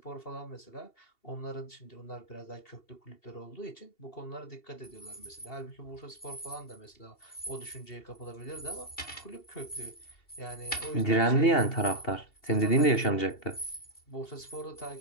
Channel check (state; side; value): late; right; 2.7 ms